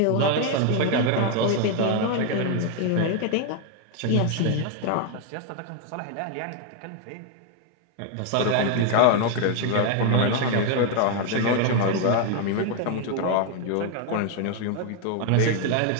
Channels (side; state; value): both; different; correlation 0.01